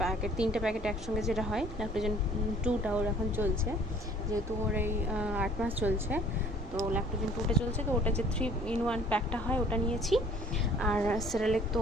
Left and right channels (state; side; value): normal; both; correlation 0.54